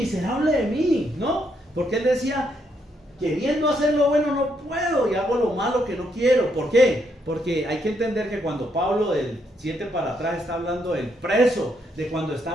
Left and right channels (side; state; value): both; normal; correlation 0.76